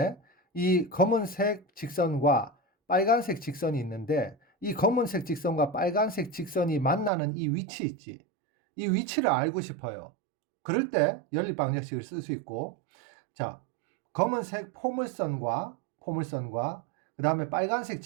이 검은색 직선과 빨간색 직선이 있는데 이 검은색 직선과 빨간색 직선이 만나는 이 위치 있지. 이 위치를 알고 싶어요. 그럴 때 연립 방정식을 쓸 수 있고, 자, 검은색 포물선과 그다음에 빨간색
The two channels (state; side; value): drops out; left; at 7.1 s